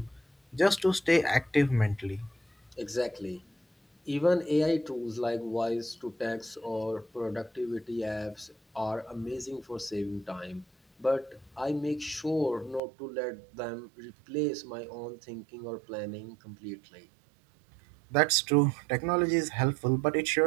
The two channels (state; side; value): drops out; left; at 12.8 s